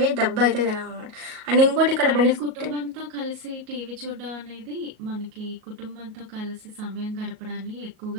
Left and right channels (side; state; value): left; late; 38 ms